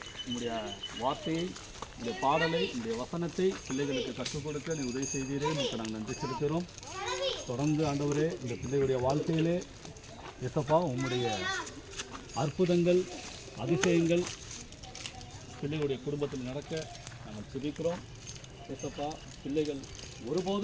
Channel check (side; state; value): both; identical; correlation 1.00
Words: உங்களுடைய வார்த்தையை, இந்த பாடலை, இந்த வசனத்தை பிள்ளைகளுக்கு கற்றுக் கொடுக்க நீ உதவி செய்தீரே, உங்களுக்கு நாங்கள் நன்றி செலுத்துகிறோம். தொடர்ந்து ஆண்டவரே இந்த பிள்ளைகளுடைய வாழ்க்கையிலே எசப்பா உம்முடைய அற்புதங்கள், அதிசயங்கள் பிள்ளைகளுடைய குடும்பத்தில் நடக்க நாங்கள் ஜெபிக்கிறோம். எசப்பா பிள்ளைகள்